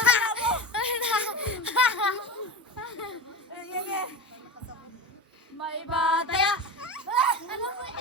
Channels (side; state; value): both; normal; correlation 0.25